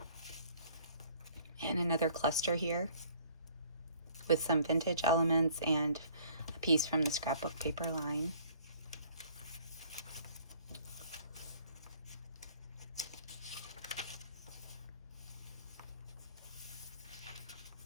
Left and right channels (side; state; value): both; inverted; correlation -0.56